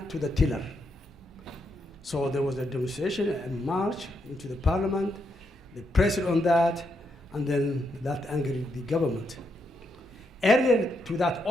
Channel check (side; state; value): both; normal; correlation 0.80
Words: to the tiller. So there was a demonstration, a march into the parliament. They pressed on that, and then that angered the government. Earlier to that